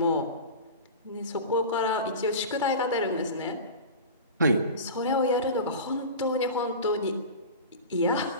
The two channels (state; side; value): inverted; both; correlation -0.30